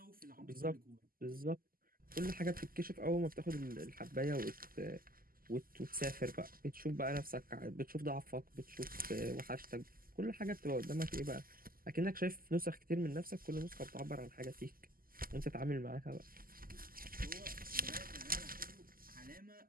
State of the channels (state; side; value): late; left; 0.42 ms